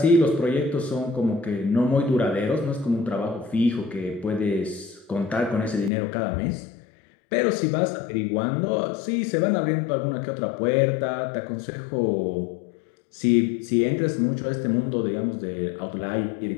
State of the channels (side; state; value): right; drops out; at 5.9 s